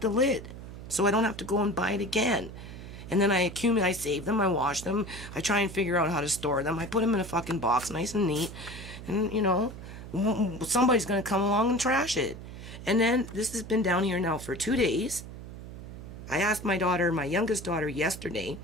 the lid, so I don't have to go and buy it again. And then I save them, I wash them, I try and figure out how to store them, I put them in a fucking box, nice and neat, and, you know, somebody's gonna come along and trash it. And then this has been down here now for 2 days. I asked my daughter, my youngest daughter, yesterday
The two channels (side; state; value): right; noise; hum, 12 dB below the sound